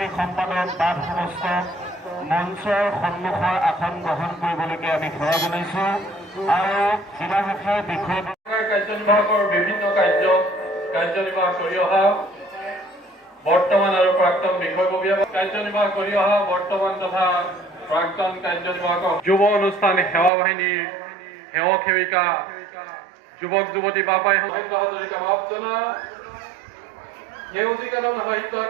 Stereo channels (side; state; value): left; drops out; at 20.3 s